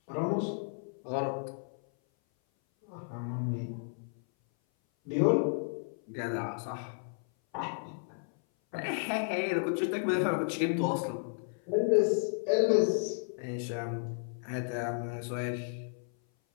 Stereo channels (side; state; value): right; silent; 56 dB below the other